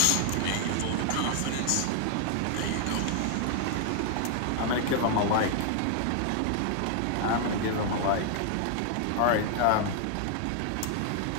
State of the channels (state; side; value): different; both; correlation 0.00